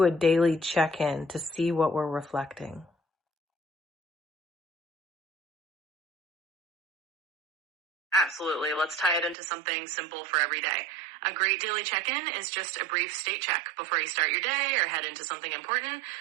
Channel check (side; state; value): left; drops out; at 9.3 s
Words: a daily check-in to see what we're reflecting? Absolutely. Let's tie it into something simple for every day. A great daily check-in is just a brief state check before you start your day or head into something important.